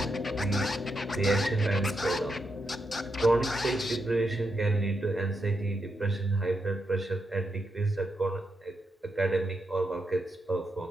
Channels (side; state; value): both; normal; correlation 0.83